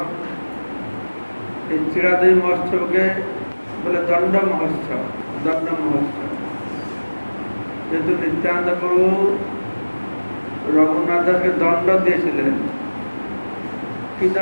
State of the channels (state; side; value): inverted; both; correlation -1.00